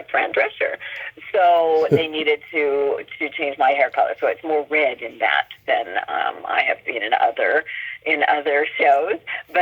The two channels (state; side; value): identical; both; correlation 1.00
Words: Fran Drescher. So they needed to change my hair color. So it's more red in that than I have seen in other shows.